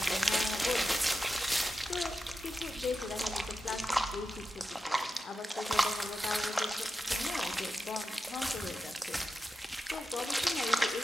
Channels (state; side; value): normal; both; correlation 0.91